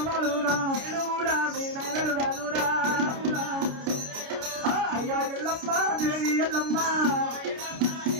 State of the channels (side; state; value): left; late; 29 ms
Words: తెలుగు కూడా మీ నైనలు కాదురా అయ్యా ఎల్లమ్మ దేవి ఎల్లమ్మ